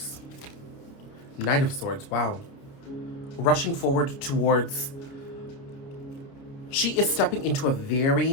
Knight of Swords, wow. Rushing forward towards, she is stepping into a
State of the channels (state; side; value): late; right; 29 ms